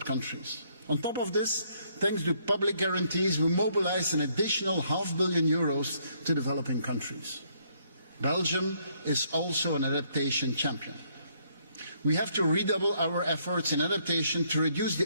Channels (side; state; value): both; inverted; correlation -0.70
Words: countries. On top of this, thanks to public guarantees, we mobilized an additional €500 million to developing countries. Belgium is also an adaptation champion. We have to redouble our efforts in adaptation to reduce